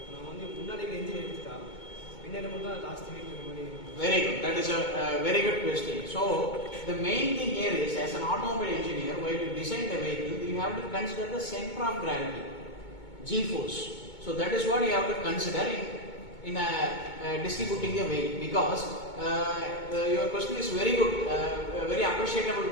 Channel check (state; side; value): late; right; 2.2 ms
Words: நம்ம வந்து முன்னாடி இன்ஜின் எடுத்துட்டா பின்னாடி மட்டும் தான் லாஸ்ட் வீட்டில் இருக்கிற மாதிரி. Very good. That is a very good question. So the main thing here is, as an automobile engineer, while you design the vehicle, you have to consider the center of gravity, G-force. So that is what you have to consider in distributing the weight, because your question is very good, very appreciable